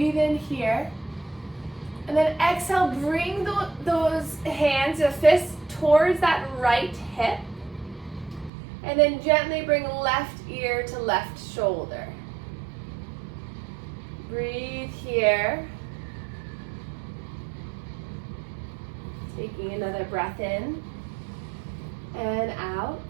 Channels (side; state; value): left; drops out; at 8.5 s